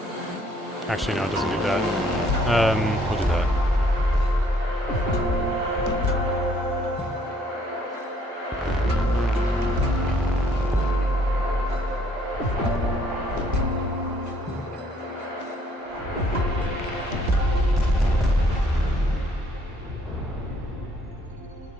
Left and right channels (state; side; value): normal; both; correlation 0.64